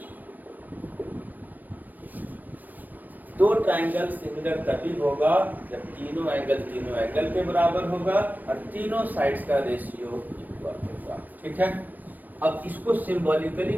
दो ट्रायंगल सिमिलर तभी होगा जब तीनों एंगल के बराबर होगा और तीनों साइड्स का रेशियो इक्वल होगा। ठीक है। अब इसको सिंबॉलिकली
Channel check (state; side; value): late; left; 0.087 ms